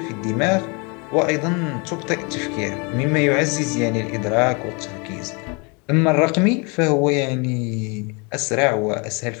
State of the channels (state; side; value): quieter; right; 31.6 dB